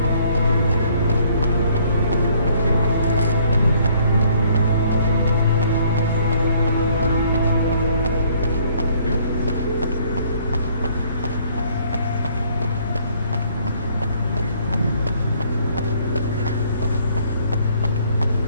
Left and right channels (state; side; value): inverted; both; correlation -0.62